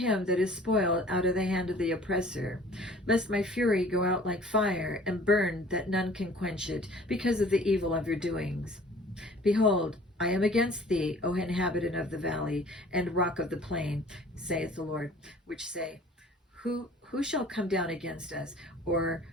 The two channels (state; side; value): normal; both; correlation 0.50